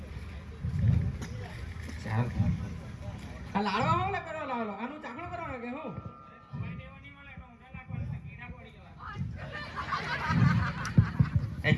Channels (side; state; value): both; identical; correlation 1.00